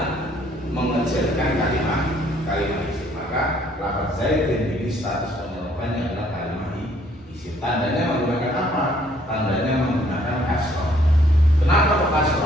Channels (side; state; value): both; normal; correlation 0.63